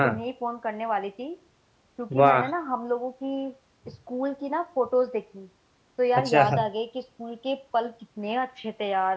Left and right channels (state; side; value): identical; both; correlation 1.00